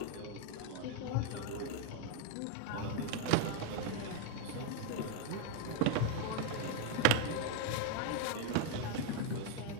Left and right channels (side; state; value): both; different; correlation 0.01